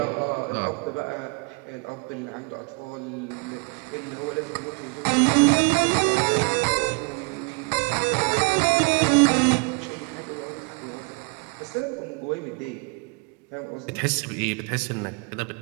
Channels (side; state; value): left; quieter; 31.9 dB